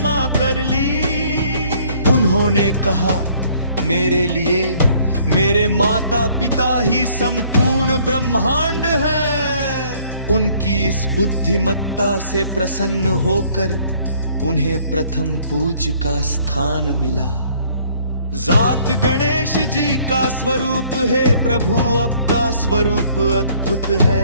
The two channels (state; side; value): inverted; both; correlation -0.60